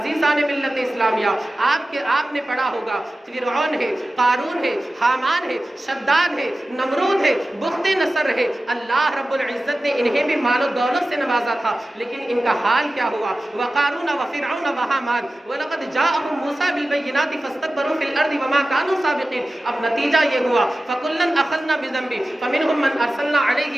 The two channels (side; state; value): both; normal; correlation 0.95